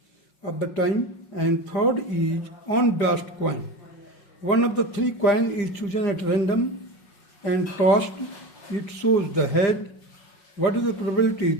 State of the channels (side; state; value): right; late; 5.5 ms